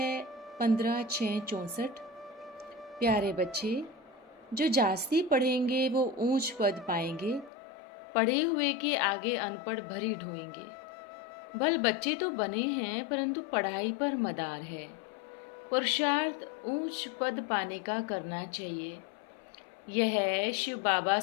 15/6/64। प्यारे बच्चे, जो जास्ती पढ़ेंगे वो ऊंच पद पाएंगे, पढ़े हुए के आगे अनपढ़ भरी ढोएंगे। भल बच्चे तो बने हैं परंतु पढ़ाई पर मदार है। पुरुषार्थ ऊंच पद पाने का करना चाहिए। यह शिव बाबा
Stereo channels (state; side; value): drops out; right; at 7.5 s